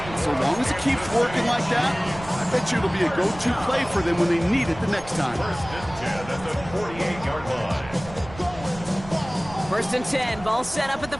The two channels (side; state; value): right; noise; rumble, 15 dB below the sound